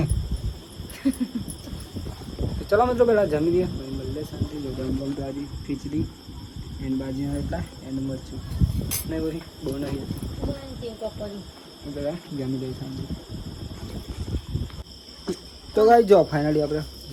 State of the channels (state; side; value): identical; both; correlation 1.00